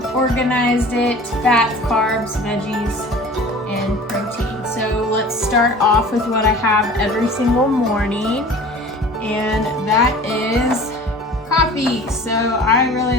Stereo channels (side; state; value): both; normal; correlation 0.43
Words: organized it: fats, carbs, veggies, and protein. So let's start off with what I have every single morning, and that is coffee. So I really